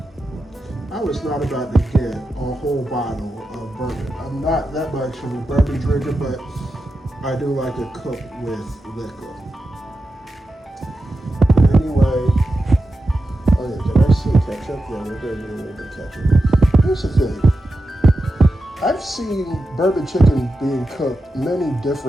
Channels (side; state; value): both; normal; correlation 0.90